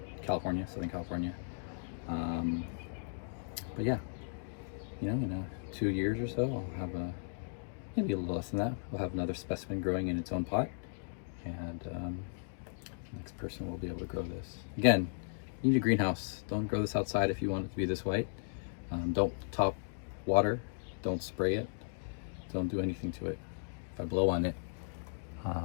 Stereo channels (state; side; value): silent; right; digital silence